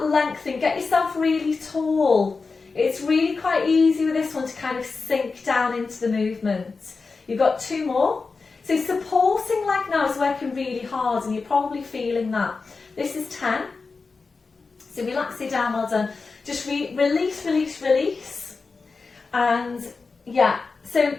length and get yourself really tall. It's really quite easy with this one to kind of sink down into the movement. You've got 2 more. So supporting leg now is working really hard, and you're probably feeling that. This is 10. So relax it down, well done. Just release, release, release. And yeah, so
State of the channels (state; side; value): quieter; right; 4.3 dB